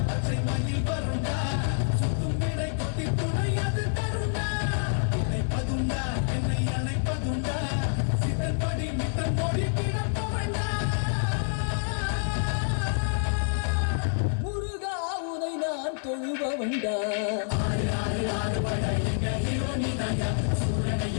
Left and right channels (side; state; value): right; silent; 60 dB below the other